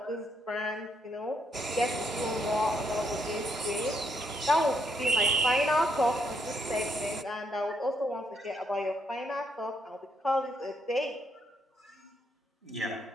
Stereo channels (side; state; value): both; normal; correlation 0.75